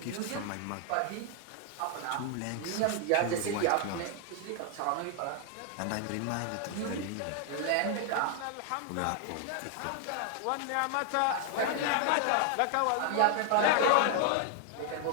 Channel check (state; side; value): different; both; correlation 0.00